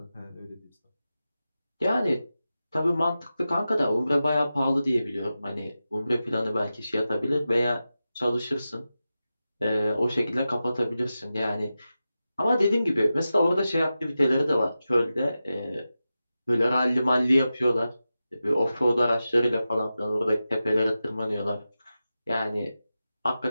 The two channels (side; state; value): both; inverted; correlation -0.92